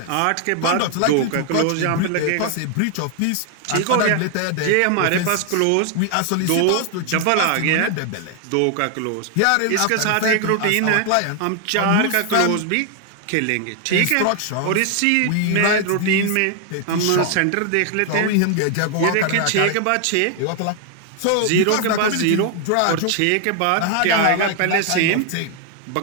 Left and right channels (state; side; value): different; both; correlation 0.00